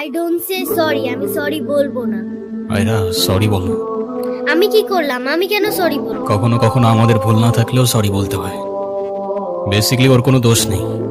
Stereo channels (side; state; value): both; identical; correlation 1.00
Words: ডোন্ট সে সরি, আমি সরি বলবো না। আয়রা সরি বলো। আমি কি করলাম? আমি কেন সরি বলবো? কখনো কখনো আমাদের ভুল না থাকলেও সরি বলতে হয়। বেসিক্যালি ওর কোনো দোষ নেই।